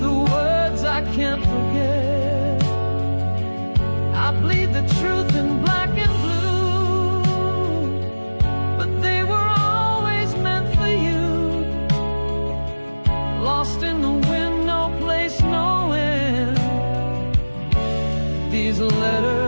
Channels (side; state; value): both; inverted; correlation -1.00